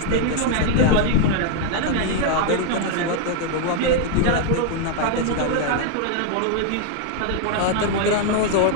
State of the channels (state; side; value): different; both; correlation 0.00